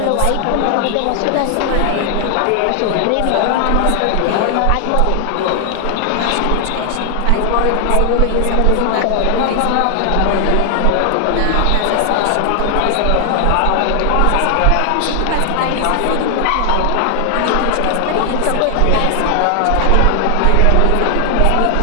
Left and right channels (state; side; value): different; both; correlation 0.00